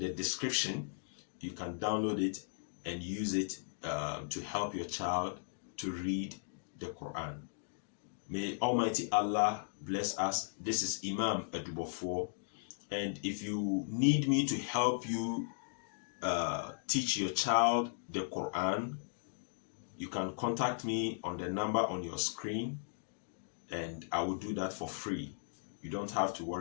description. You can download it and use it to help your child to read the Quran. May Almighty Allah bless us. This is Imam Edubofo, and if you need me to help you teach your child the Quran, you can contact me on the number on your screen, and I will do that for free. You don't have to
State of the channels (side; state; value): right; silent; digital silence